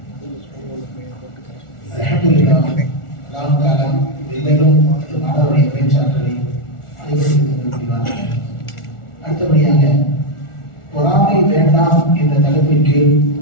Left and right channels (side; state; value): right; late; 1.4 ms